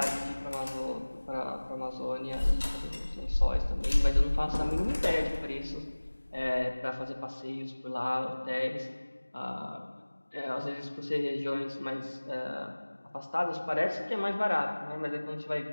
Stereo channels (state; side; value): inverted; both; correlation -1.00